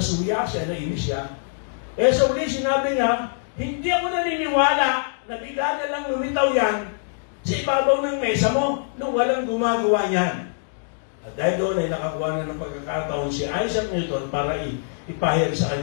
siya, nainis siya. Sa uli, sinabi niya, hindi ako naniniwala na bigla na lang lumitaw yan sa ibabaw ng mesa mo nung walang gumagawa niyan. At dahil doon ay nakakuha na ng pagkakataon si Isaac Newton para ipahayag sa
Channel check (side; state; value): right; silent; digital silence